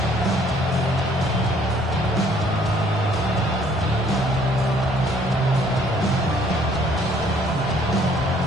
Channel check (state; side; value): normal; both; correlation 0.61